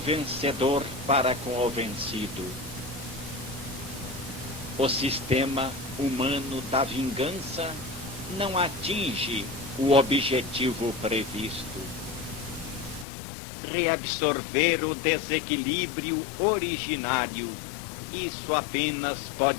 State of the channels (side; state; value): right; drops out; at 13.1 s